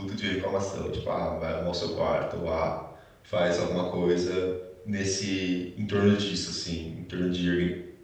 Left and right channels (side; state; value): both; identical; correlation 1.00